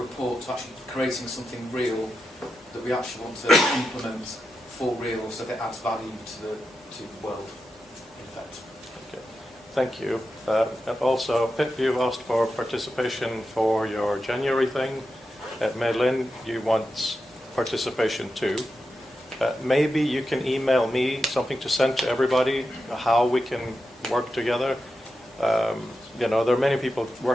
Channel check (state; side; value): normal; both; correlation 0.89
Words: to actually creating something real that we actually want to implement for real, so that it adds value to the world, in fact. Okay. Thank you. And also, Pip, you asked for participation for your January thing. Madeline, you want participation too. Maybe you can email me something to send to everybody, how we can work together. There are many people